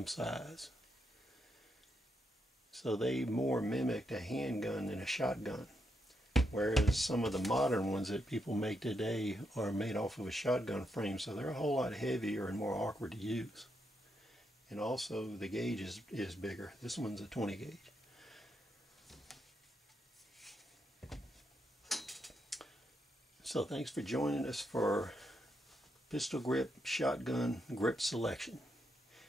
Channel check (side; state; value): both; normal; correlation 0.81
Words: size. So they more mimicked a handgun than a shotgun. Whereas some of the modern ones that people make today are made off of a shotgun frame, so they're a whole lot heavier and more awkward to use. And also the gauge is bigger. This one's a 20 gauge. So thanks for joining us for pistol grip shotgun grip selection.